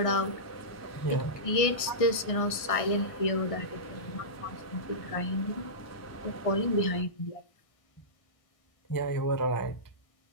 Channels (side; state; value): right; late; 1.6 ms